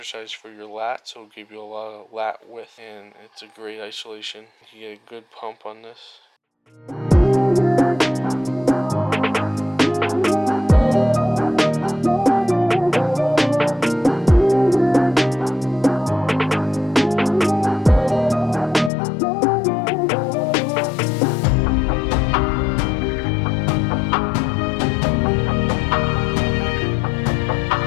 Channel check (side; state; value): right; drops out; at 18.9 s